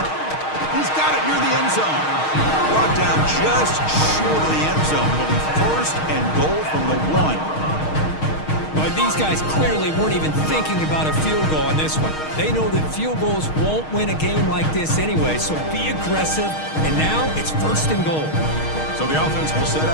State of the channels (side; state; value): right; late; 6.4 ms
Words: He's got it near the end zone. Brought down just short of the end zone. It'll be 1st and goal from the 1. But these guys clearly weren't even thinking about a field goal on this one. They know that field goals won't win a game like this anyway, so be aggressive. And now it's 1st and goal. So the offense will set